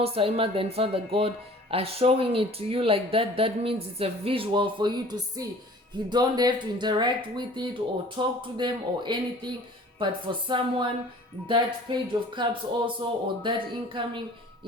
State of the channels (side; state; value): both; normal; correlation 0.48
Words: High Mother and Father God are showing it to you like that, that means it's a visual for you to see. You don't have to interact with it or talk to them or anything. But for someone, that Page of Cups also, or that incoming